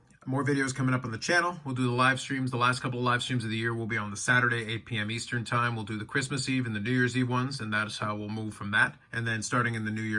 More videos coming up on the channel. We'll do the live streams. The last couple of live streams of the year will be on the Saturday, 8 p.m. Eastern time. We'll do the Christmas Eve and the New Year's Eve ones, and that's how we'll move from that. And then starting in the new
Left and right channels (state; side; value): identical; both; correlation 1.00